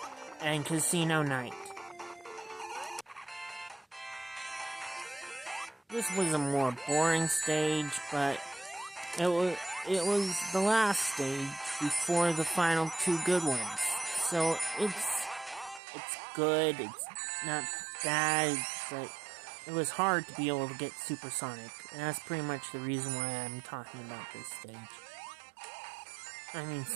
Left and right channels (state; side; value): drops out; left; at 15.8 s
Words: and Casino Night. This was a more boring stage, but it was the last stage before the final two good ones. So it's good, it's not bad, but it was hard to be able to get Supersonic, and that's pretty much the reason why I'm talking about this stage. I mean,